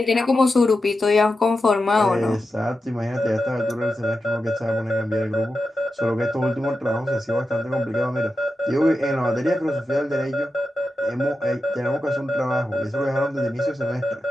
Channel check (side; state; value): both; normal; correlation 0.90